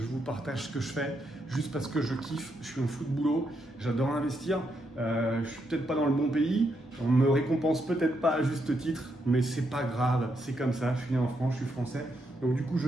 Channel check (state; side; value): normal; both; correlation 0.79